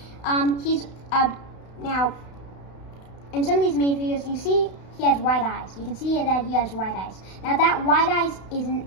He's now in some of these minifigures you see he has white eyes. You can see that he has white eyes. Now that white eyes isn't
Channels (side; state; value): right; late; 32 ms